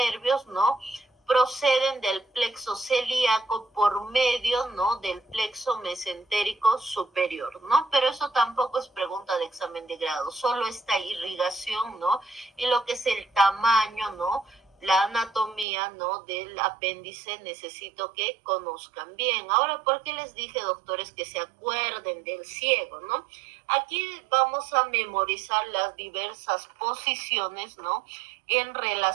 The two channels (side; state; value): left; drops out; at 15.7 s